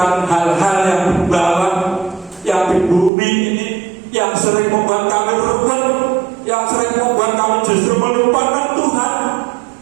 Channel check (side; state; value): left; drops out; at 3.1 s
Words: hal-hal yang di bawah, yang di bumi ini, yang sering membuat kami berubah, yang sering membuat kami justru melupakan Tuhan.